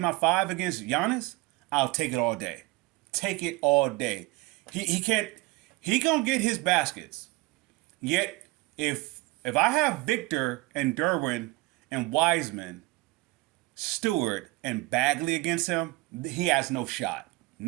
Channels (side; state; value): left; quieter; 21.1 dB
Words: my 5 against Giannis. I'll take it all day. Take it all day. He can't. He gonna get his baskets. Yet if I have Victor and Derwin and Wiseman, Stewart and Bagley against him, he has no shot.